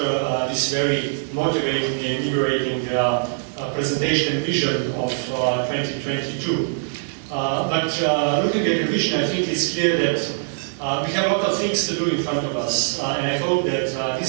this very motivating and invigorating presentation and vision of 2022. But looking at the vision, I think it's clear that we have a lot of things to do in front of us, and I hope that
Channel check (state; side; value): silent; left; digital silence